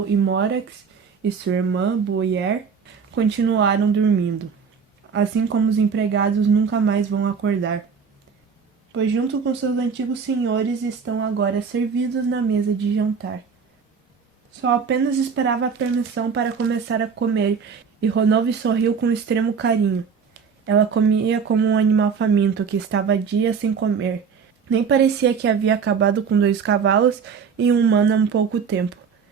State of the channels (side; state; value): left; quieter; 6.1 dB